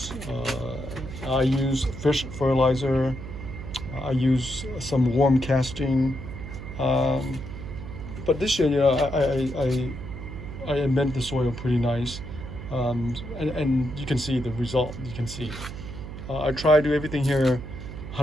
I used fish fertilizer. I used some worm casting. But this year, I amend the soil pretty nice. And you can see the result. You can see. I try to do everything here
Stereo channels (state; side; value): noise; right; hum, 10 dB below the sound